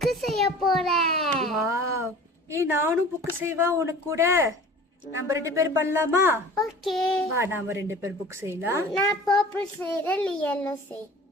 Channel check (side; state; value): both; normal; correlation 0.42